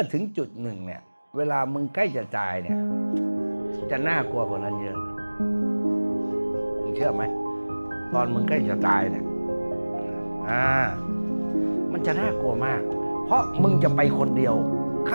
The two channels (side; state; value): both; inverted; correlation -1.00